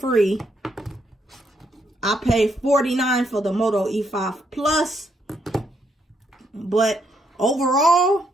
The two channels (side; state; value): both; normal; correlation 0.75